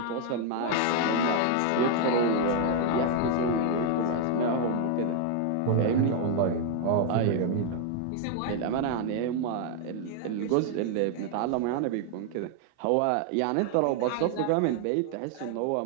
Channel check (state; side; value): different; both; correlation 0.00